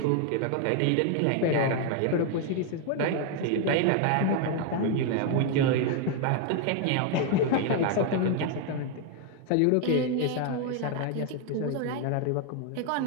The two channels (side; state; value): both; different; correlation 0.00